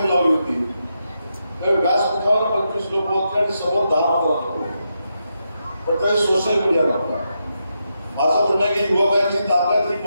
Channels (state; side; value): inverted; both; correlation -0.84